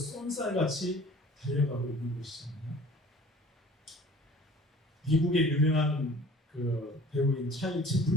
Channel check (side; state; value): both; normal; correlation 0.47